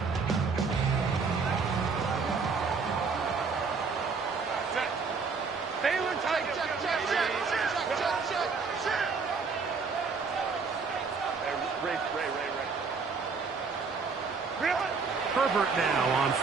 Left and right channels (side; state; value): left; quieter; 4.9 dB